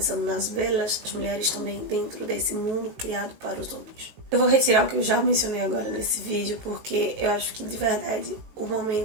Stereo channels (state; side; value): late; left; 18 ms